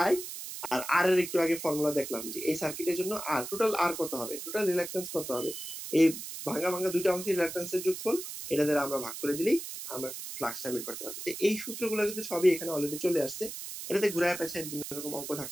আই। আর আর এর একটু আগে ফর্মুলা দেখলাম যে এই সার্কিটের জন্য আর টোটাল আর কত হবে, টোটাল রিলাক্টেন্স কত হবে, এই ভাঙা ভাঙা দুইটা অংশের রিলাক্টেন্সের যোগফল, এটা দ্বারা আমরা ভাগ করে দিলেই আমরা ফ্লাক্সটা বের করতে পারবো। এই সূত্রগুলো কিন্তু সবই এখানে অলরেডি চলে আসছে। এটাতে ঘুরায় পেছায় বিভিন্ন রকম অঙ্ক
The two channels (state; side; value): noise; right; hiss, 8 dB below the sound